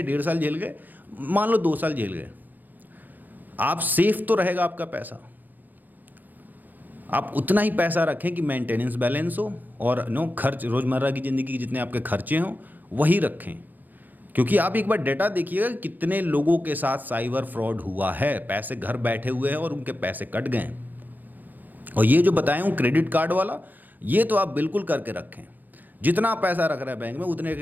1.5 साल झेल गए, मान लो 2 साल झेल गए, आप सेफ तो रहेगा आपका पैसा। आप उतना ही पैसा रखें कि मेंटेनेंस बैलेंस हो, और खर्च, रोज़मर्रा की ज़िंदगी के जितने आपके खर्चे हों वही रखें। क्योंकि आप एक बार डेटा देखिएगा कितने लोगों के साथ साइबर फ्रॉड हुआ है, पैसे घर बैठे हुए हैं और उनके पैसे कट गए। और ये जो बताया हूँ क्रेडिट कार्ड वाला, ये तो आप बिल्कुल करके रखें। जितना पैसा रख रहे हैं बैंक में, उतने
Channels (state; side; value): late; left; 0.085 ms